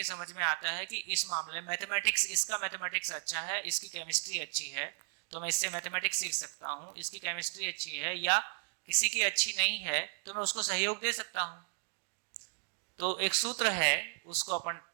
समझ में आता है कि इस मामले में मैथमेटिक्स, इसका मैथमेटिक्स अच्छा है, इसकी केमिस्ट्री अच्छी है, तो मैं इससे मैथमेटिक्स सीख सकता हूँ। इसकी केमिस्ट्री अच्छी है या किसी की अच्छी नहीं है तो मैं उसको सहयोग दे सकता हूँ। तो एक सूत्र है, उसको अपन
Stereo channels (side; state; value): left; silent; digital silence